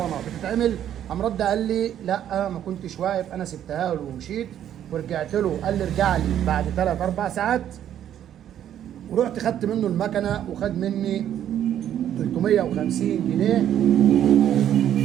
بتتعمل. قام رد قال لي لا ما كنتش واقف، انا سبتها له ومشيت ورجعت له. قال لي ارجع لي بعد 3 4 ساعات، ورحت خدت منه المكنه وخد مني 350 جنيه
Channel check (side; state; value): left; quieter; 10.6 dB